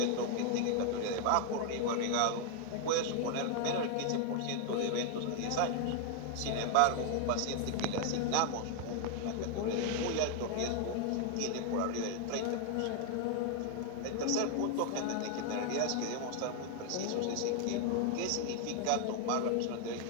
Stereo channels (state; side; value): different; both; correlation 0.00